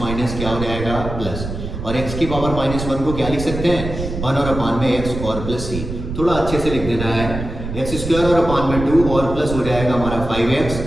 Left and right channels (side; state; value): right; noise; rumble, 7 dB below the sound